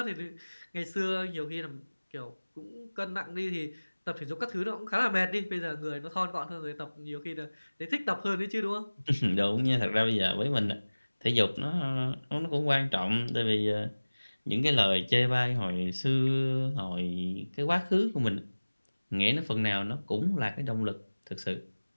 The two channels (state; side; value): inverted; both; correlation -1.00